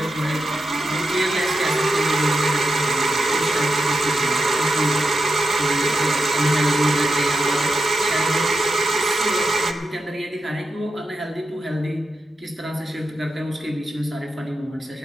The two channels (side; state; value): both; normal; correlation 0.86